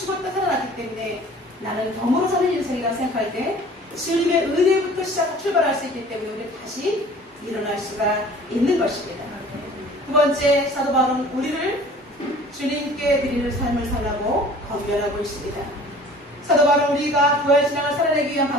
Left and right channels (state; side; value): normal; both; correlation 0.48